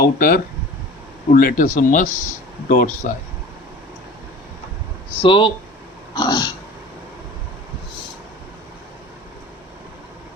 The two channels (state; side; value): normal; both; correlation 0.41